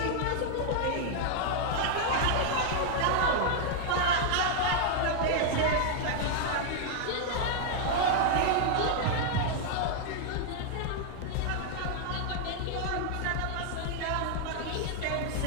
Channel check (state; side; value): different; both; correlation 0.00